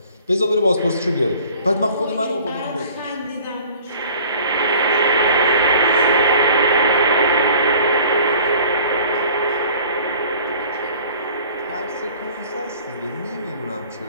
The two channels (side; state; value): both; inverted; correlation -0.49